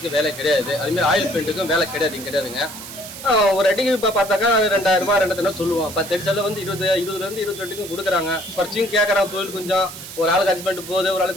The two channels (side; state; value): right; noise; hiss, 12 dB below the sound